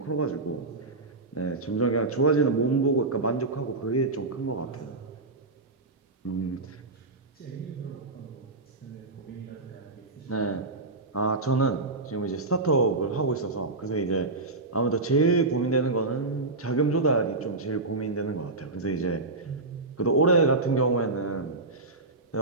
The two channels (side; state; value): left; quieter; 3.3 dB